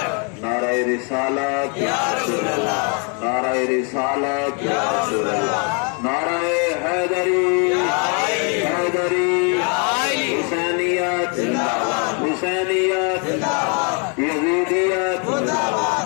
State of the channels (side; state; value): right; quieter; 36.6 dB